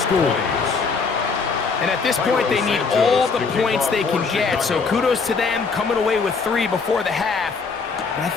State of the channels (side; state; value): right; quieter; 4.9 dB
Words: And at this point, they need all the points they can get. So kudos to them coming away with 3 before the half. But I